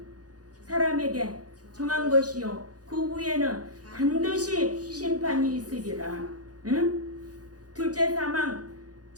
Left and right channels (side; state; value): left; late; 0.68 ms